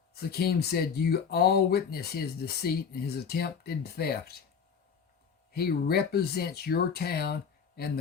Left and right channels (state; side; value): quieter; right; 6.5 dB